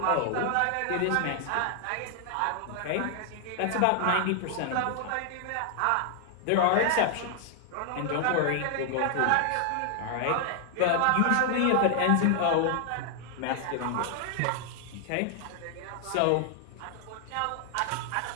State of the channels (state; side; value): different; both; correlation 0.00